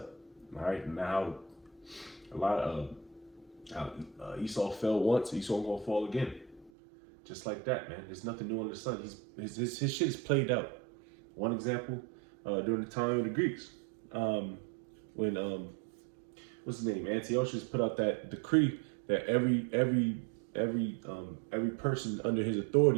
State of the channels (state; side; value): drops out; left; at 6.7 s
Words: All right. Now a lot of Esau fell once, Esau gonna fall again. Just like that, man. There's nothing new under the sun. His shit is played out. One example, during the time of the Greeks. When what's his name? Antiochus put out that decree that every person under his